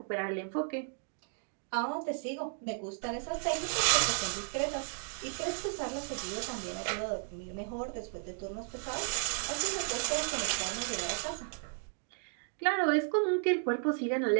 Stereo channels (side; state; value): left; silent; 55 dB below the other